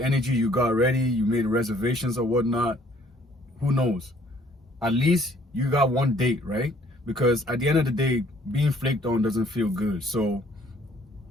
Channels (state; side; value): normal; both; correlation 0.60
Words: energy, you got ready, you made reservations or whatnot. Who knows? At least you got 1 date, right? Because at the end of the day, being flaked on doesn't feel good. So